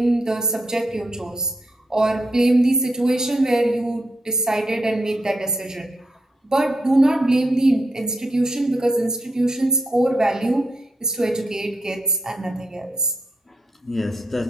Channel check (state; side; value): normal; both; correlation 0.80